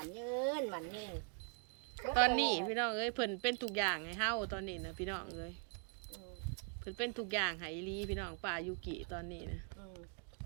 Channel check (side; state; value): left; quieter; 39.8 dB